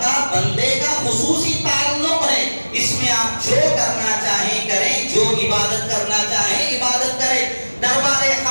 کا بندے کا خصوصی تعلق ہے۔ اس میں آپ جو کرنا چاہیں کریں، جو عبادت کرنا چاہیں عبادت کریں۔ دربار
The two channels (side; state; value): both; inverted; correlation -1.00